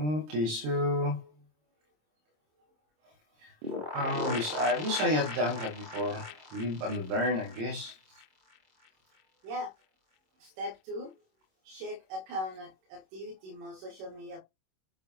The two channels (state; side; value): late; left; 26 ms